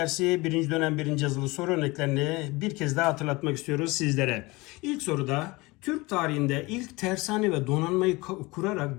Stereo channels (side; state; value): right; quieter; 23.1 dB